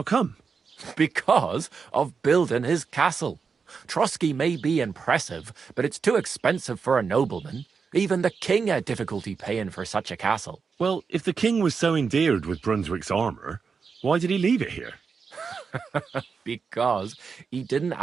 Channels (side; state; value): left; quieter; 5.5 dB